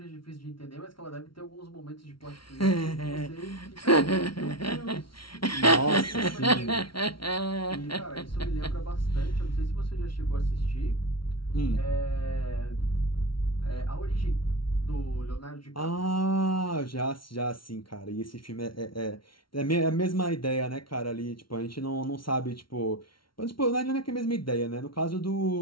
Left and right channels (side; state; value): right; late; 0.74 ms